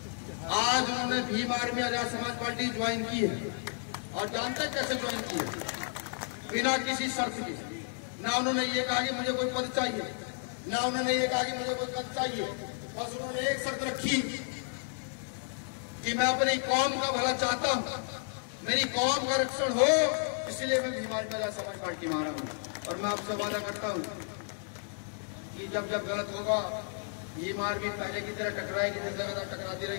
आज उन्होंने Bhim army Azad Samaj party join की है और जानते कैसे ज्वाइन की है? बिना किसी शर्त के। ना उन्होंने ये कहा कि मुझे कोई पद चाहिए, ना उन्होंने ये कहा कि मुझे कोई पद चाहिए। बस उन्होंने एक शर्त रखी कि मैं अपनी कौम का भला चाहता हूं, मेरी कौम का रक्षण हो, इसलिए मैं भीम आर्मी आजाद समाज पार्टी में आ रहा हूं। और मैं आपसे वादा करता हूं कि जब जब गलत होगा भीम आर्मी पहले की तरह टकराएगी, जिस जगह टकराती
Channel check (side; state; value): right; silent; 56 dB below the other